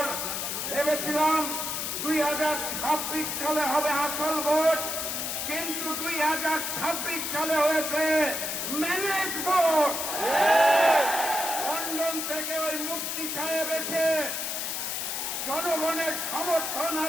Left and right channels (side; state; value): left; noise; hiss, 2 dB below the sound